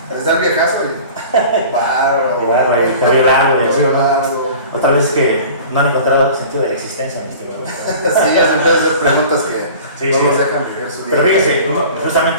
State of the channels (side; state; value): both; inverted; correlation -0.42